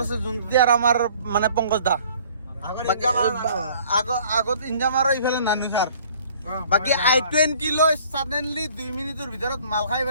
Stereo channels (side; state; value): both; inverted; correlation -0.54